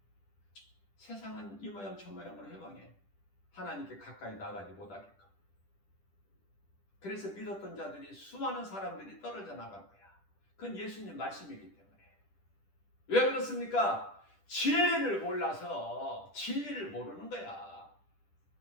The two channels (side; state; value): right; late; 10 ms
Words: 세상은 이 모양 저 모양으로 해방해. 하나님께 가까이 나가지 못하게끔. 그래서 믿었던 자들이, 수많은 사람들이 떨어져 나간 거야. 그건 예수님 말씀이기 때문에. 왜 그렇습니까? 진리를 몰라서. 진리를 모르는 거야.